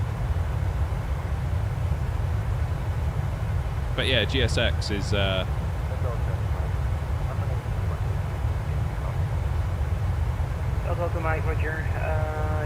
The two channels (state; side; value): identical; both; correlation 1.00